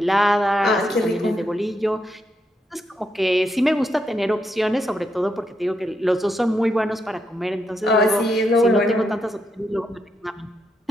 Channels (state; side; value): normal; both; correlation 0.81